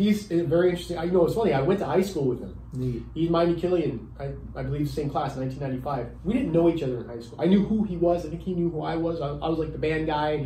very interesting. You know, it's funny, I went to high school with him. Neat. He's Miami Killian, I believe same class, 1995. We didn't know each other in high school. I knew who he was. I think he knew who I was. I was like the band guy, and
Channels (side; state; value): both; identical; correlation 1.00